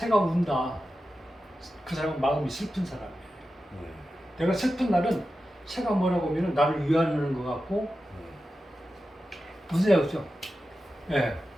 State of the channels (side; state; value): both; normal; correlation 0.92